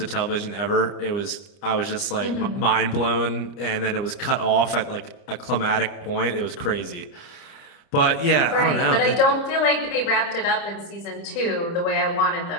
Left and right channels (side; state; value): right; late; 30 ms